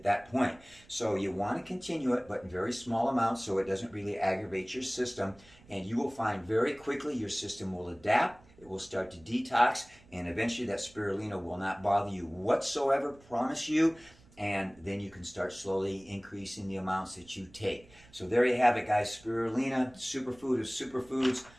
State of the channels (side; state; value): right; noise; rumble, 26 dB below the sound